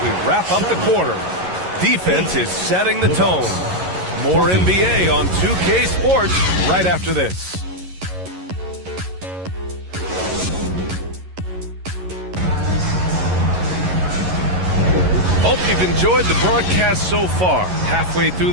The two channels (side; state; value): left; late; 11 ms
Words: we wrap up the quarter. Defense is setting the tone. More NBA on 2K Sports right after this. Hope you've enjoyed the broadcast so far. Halfway through